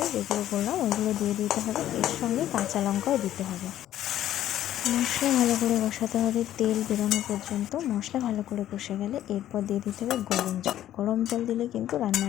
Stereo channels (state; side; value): quieter; right; 12.3 dB